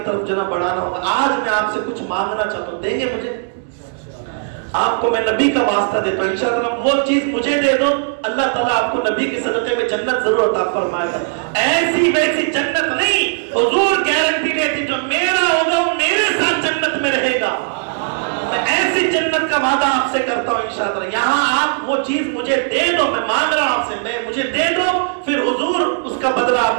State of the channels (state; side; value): silent; left; digital silence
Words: طرف جناب بڑھانا ہوگا. آج میں آپ سے کچھ مانگنا چاہتا ہوں، دیں گے مجھے؟ آپ کو میں نبی کا واسطہ دیتا ہوں، انشاءاللہ وہ چیز مجھے دے دو، اللہ تعالیٰ آپ کو نبی کے صدقے میں جنت ضرور عطا فرمائے گا. ایسی ویسی جنت نہیں، حضور گارنٹی دیتی جو میرا ہوگا وہ میرے ساتھ جنت میں رہے گا. میں ایسی جنت کا وعدہ آپ سے کرتا ہوں انشاءاللہ. یہاں آپ وہ چیز مجھے دے دو، میں مانگ رہا ہوں آپ سے، میں مجھے دے دو، پھر حضور اس کا بدلہ